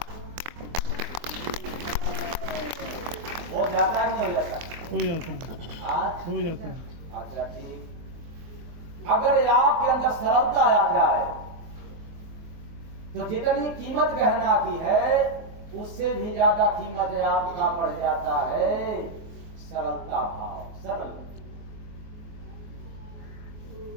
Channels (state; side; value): late; left; 23 ms